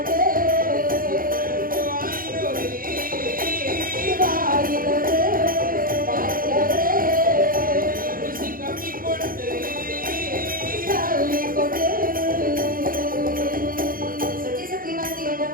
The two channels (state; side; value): late; left; 0.41 ms